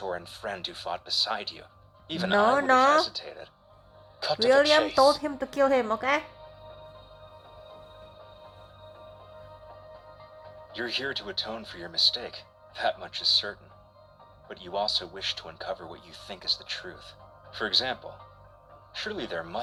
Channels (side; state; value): both; identical; correlation 1.00